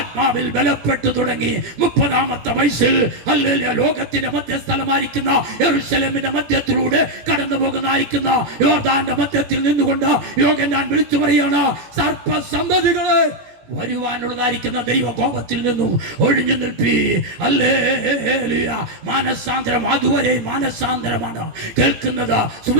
ബലപ്പെട്ടു തുടങ്ങി. 30ാമത്തെ വയസ്സിൽ ഹല്ലേലൂയ, ലോകത്തിന്റെ മധ്യസ്ഥലമായിരിക്കുന്ന യെരൂശലേമിന്റെ മധ്യത്തിലൂടെ കടന്നു പോകുന്നതായിരിക്കുന്ന യോർദാന്റെ മധ്യത്തിൽ നിന്നുകൊണ്ട് യോഹന്നാൻ വിളിച്ചു പറയാണ്, സർപ്പസന്തതികളെ, വരുവാനുള്ളതായിരിക്കുന്ന ദൈവകോപത്തിൽ നിന്നും ഒഴിഞ്ഞു നിൽപ്പി. ഹല്ലേലൂയ. മാനസാന്തരം അതുവരെ മാനസാന്തരമാണ് കേൾക്കുന്നത്.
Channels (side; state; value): left; late; 17 ms